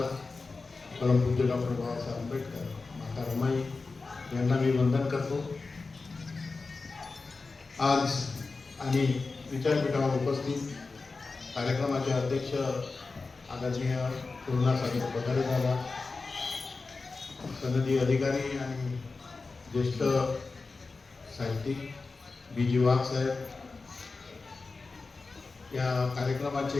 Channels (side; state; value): right; quieter; 4.0 dB